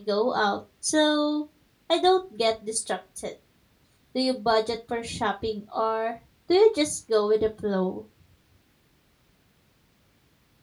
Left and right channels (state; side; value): identical; both; correlation 1.00